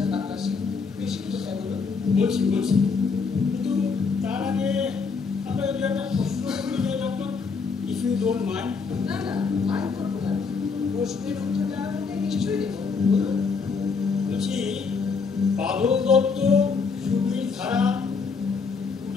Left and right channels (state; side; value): quieter; right; 5.0 dB